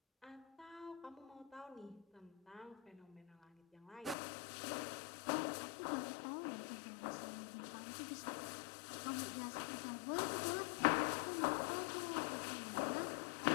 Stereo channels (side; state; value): right; drops out; at 4.2 s